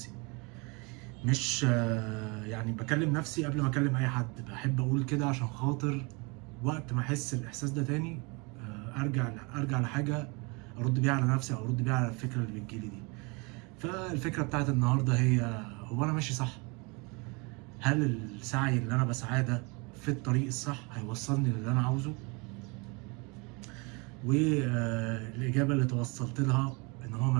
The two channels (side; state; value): left; quieter; 29.5 dB